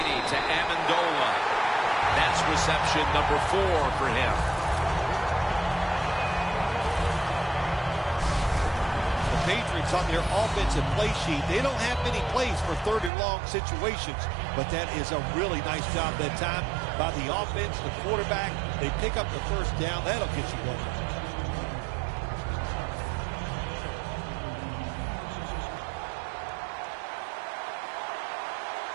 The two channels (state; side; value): drops out; left; at 13.1 s